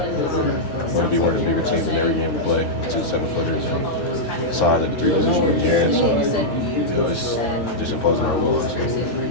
We're going to be one of the bigger teams in every game we play. 2 7-footers and size at the 3 position with Jaren. So it's just imposing our will, honestly.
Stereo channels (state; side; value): late; right; 10 ms